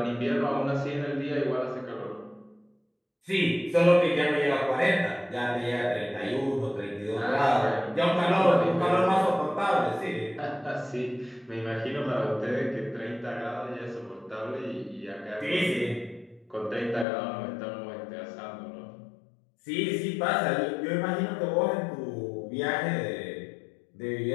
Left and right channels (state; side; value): drops out; right; at 17.1 s